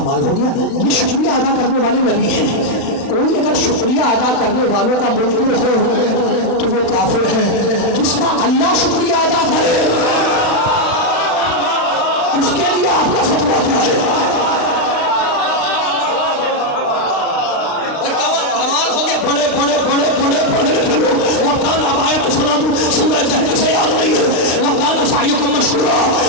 हो गया, ये शुक्रिया अदा करने वाले नबी हैं। कोई अगर शुक्रिया अदा करने वालों का मुनकिर हो तो वो काफिर है। जिसका अल्लाह शुक्रिया अदा करे उसके लिए आपका फतवा क्या है? बड़े बड़े बड़े बड़े पढ़े लिखे लोग वकान आयत सुना दूं, सूरह जहर से याद नहीं है। वकान सायुकुम मशकूरा,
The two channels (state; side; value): late; right; 36 ms